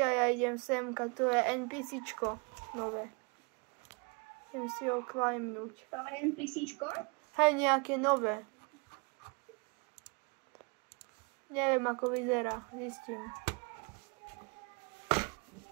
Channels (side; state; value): left; quieter; 32.9 dB